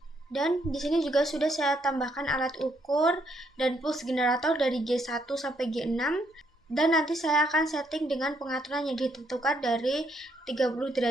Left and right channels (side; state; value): both; normal; correlation 0.73